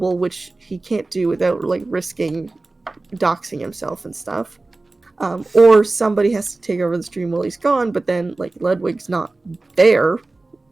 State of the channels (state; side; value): quieter; left; 3.2 dB